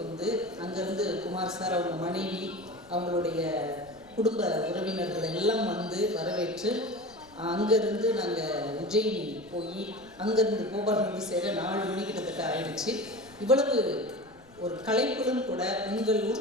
வந்து, அங்கேருந்து குமார் சார், அவங்க மனைவி, அவங்களுடைய குடும்ப உறவினர்கள் எல்லாம் வந்து வரவேற்று, அங்கேருந்து நாங்கள் உஜ்ஜயினி போய் அங்கேருந்து போபால் வந்து சேர 4 மணி கிட்டத்தட்ட ஆயிடுச்சு. இவ்வளவு ஒரு கலைப்புடன் கூட உங்கள்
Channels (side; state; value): left; noise; rumble, 27 dB below the sound